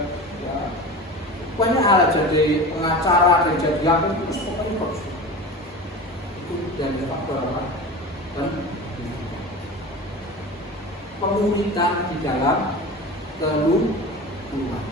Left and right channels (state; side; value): normal; both; correlation 0.31